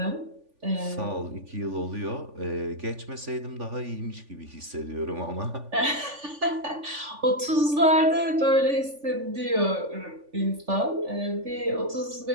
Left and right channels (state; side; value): late; left; 3.5 ms